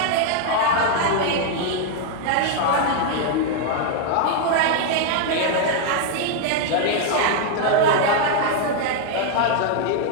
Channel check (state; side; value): different; both; correlation 0.00